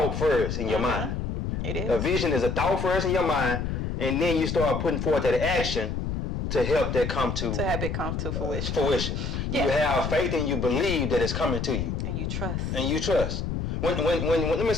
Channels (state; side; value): noise; left; rumble, 3 dB below the sound